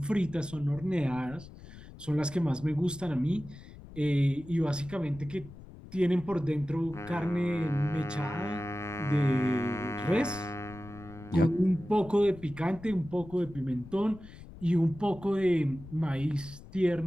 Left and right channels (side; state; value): left; noise; rumble, 17 dB below the sound